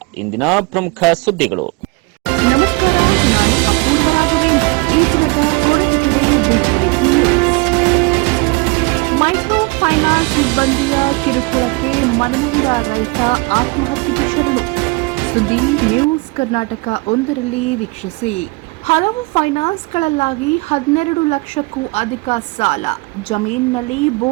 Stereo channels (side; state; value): left; quieter; 26.9 dB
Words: ಇಂದಿನ ಪ್ರಮುಖ ಸುದ್ದಿಗಳು. ನಮಸ್ಕಾರ, ನಾನು ಅಪೂರ್ವ ರಾಘವೇಂದ್ರ. ಈ ದಿನದ Koratagere big breaking news. Micro finance ಸಿಬ್ಬಂದಿಯ ಕಿರುಕುಳಕ್ಕೆ ಮನನೊಂದ ರೈತ ಆತ್ಮಹತ್ಯೆಗೆ ಶರಣು. ಸುದ್ದಿ ನ್ಯೂಸ್ ಕರ್ನಾಟಕ 1ರಲ್ಲಿ ವೀಕ್ಷಿಸಿ. ಹಲವು ಫೈನಾನ್ಸ್ಗಳಲ್ಲಾಗಿ 12 ಲಕ್ಷಕ್ಕೂ ಅಧಿಕ ಸಾಲ. ಜಮೀನಿನಲ್ಲಿ